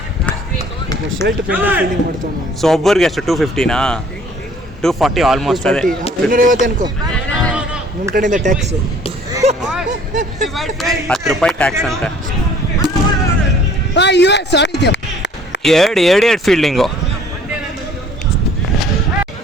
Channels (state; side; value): normal; both; correlation 0.55